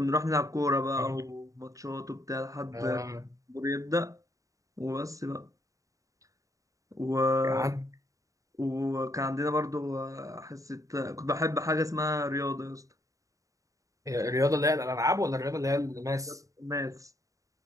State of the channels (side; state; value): left; late; 0.16 ms